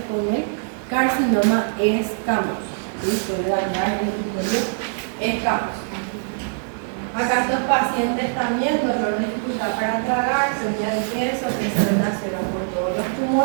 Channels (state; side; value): silent; left; 57 dB below the other